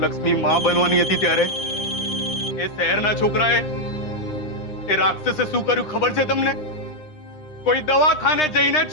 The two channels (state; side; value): late; right; 9.8 ms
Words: લક્ષ્મી માં બનવાની હતી ત્યારે એ શહેરના છોકરાએ, એ રાક્ષસે શું કર્યું ખબર છે તમને? કોઈ દવાખાને જઈને